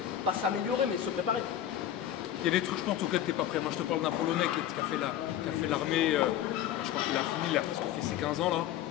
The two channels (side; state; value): right; quieter; 11.1 dB